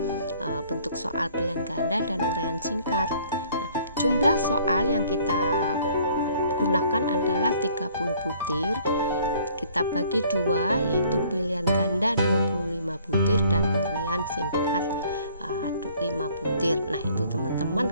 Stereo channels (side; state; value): both; inverted; correlation -0.58